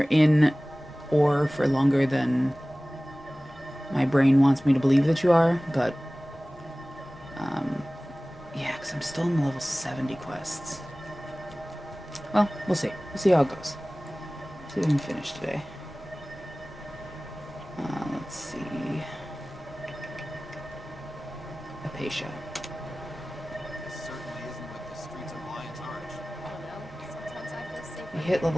in ore for longer than my brain wants me to believe that you are, but yeah, because I'm still in the level 70 quests. Well, we'll see. We'll see how it goes. See if we can finish today. Let's see. Apatia. We hit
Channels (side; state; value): both; normal; correlation 0.98